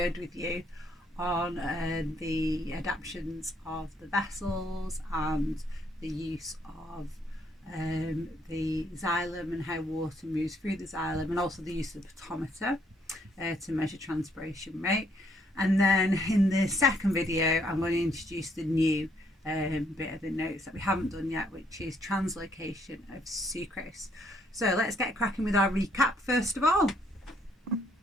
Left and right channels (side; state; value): both; normal; correlation 0.69